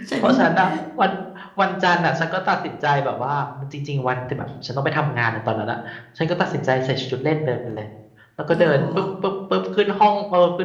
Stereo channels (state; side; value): identical; both; correlation 1.00